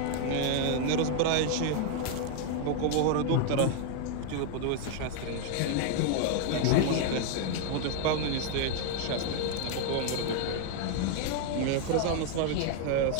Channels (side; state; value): both; different; correlation 0.00